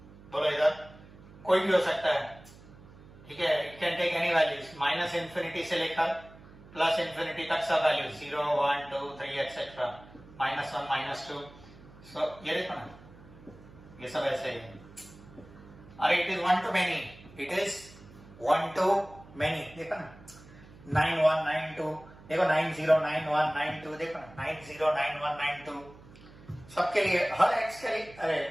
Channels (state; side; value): noise; right; hum, 21 dB below the sound